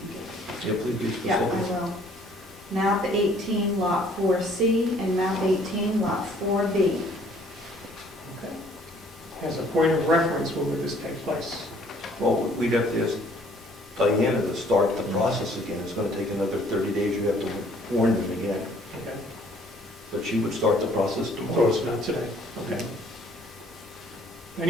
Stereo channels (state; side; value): normal; both; correlation 0.59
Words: get Yeah, please be specific. Yeah, I will. Map 18, Lot 4C, and Map 18, Lot 4B. Okay. As a point of reference, when would this take place? Well, we'd have to ask Dianna to start the process again. It's going to take another 30 days. You have to warn them again. Okay. But she would start the process So tomorrow. it's not today. Okay.